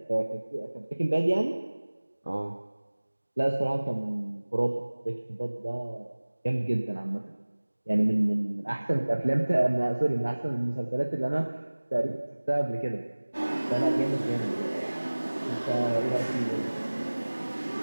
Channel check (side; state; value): both; inverted; correlation -1.00